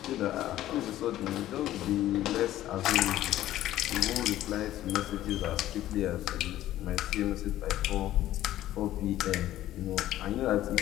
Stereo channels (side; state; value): right; quieter; 13.8 dB